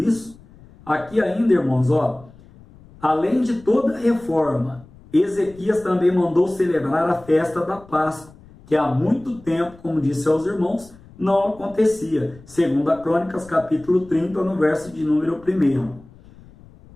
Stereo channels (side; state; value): left; noise; rumble, 23 dB below the sound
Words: Aqui ainda, irmãos, além de toda a reforma, Ezequias também mandou celebrar a festa da Páscoa, que há muito tempo, como disse aos irmãos, não acontecia. Segundo a Crônicas, capítulo 30, no verso de número 1.